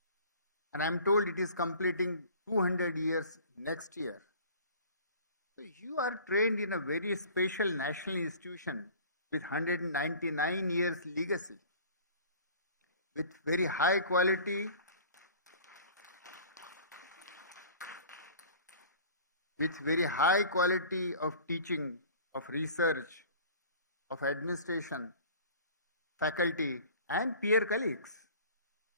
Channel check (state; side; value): inverted; both; correlation -0.45